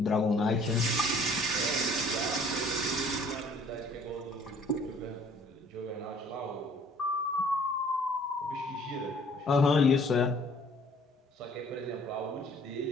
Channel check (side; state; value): both; normal; correlation 0.56